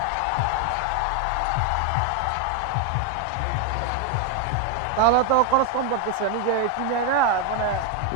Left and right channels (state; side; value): different; both; correlation 0.01